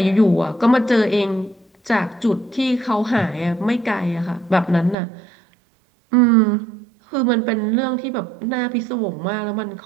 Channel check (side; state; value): left; drops out; at 5.0 s